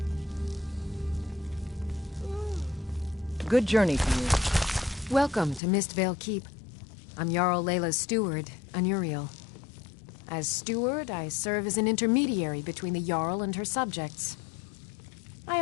Good journey to you. Welcome to Mistvale Keep. I'm Jarl Layla's steward, Anuriel. As steward, I serve as an intermediary between the Jarl and her subjects. I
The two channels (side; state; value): right; drops out; at 5.6 s